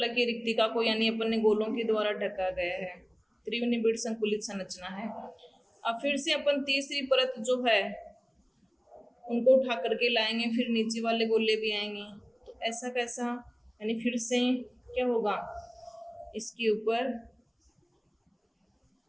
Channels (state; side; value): identical; both; correlation 1.00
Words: रिक्तिका को यानी अपन ने गोलों के द्वारा ढका गया है, त्रिविम निबिड़ संकुलित संरचना है। अब फिर से अपन तीसरी परत जो है उनको उठा करके लाएंगे, फिर नीचे वाले गोले भी आएंगे, तो ऐसा कैसा, यानी फिर से क्या होगा, इसके ऊपर